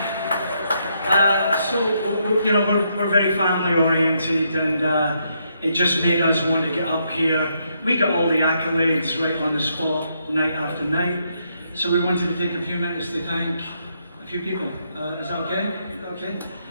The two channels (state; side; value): inverted; both; correlation -0.76